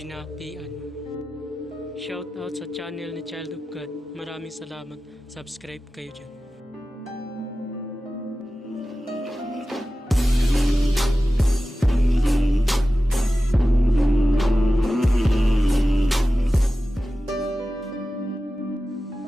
Shout out sa channel ni Child of God. Maraming salamat. Subscribe kayo dyan.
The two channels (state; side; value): normal; both; correlation 0.94